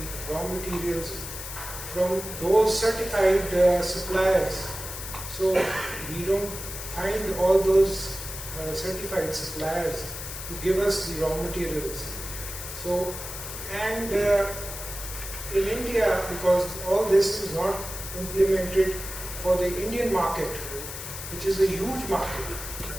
raw materials from those certified suppliers. So we don't find all those certified suppliers to give us the raw materials. So, and in India, because all this is not implemented for the Indian market, which is a huge market,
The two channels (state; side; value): noise; left; hiss, 9 dB below the sound